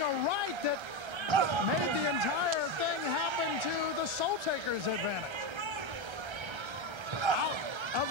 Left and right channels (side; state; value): left; late; 1.3 ms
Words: a right that made the entire thing happen to the Soul Taker's advantage. Out of